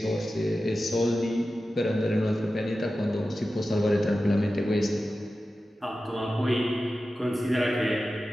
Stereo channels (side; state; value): both; normal; correlation 0.93